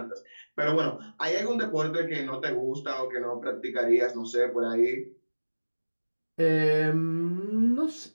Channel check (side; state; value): both; inverted; correlation -1.00